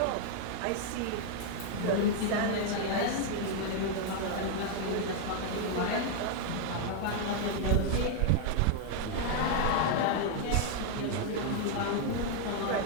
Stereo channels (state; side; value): different; both; correlation 0.00